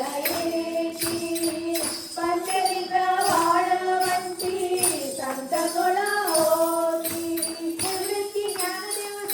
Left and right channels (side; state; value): both; identical; correlation 1.00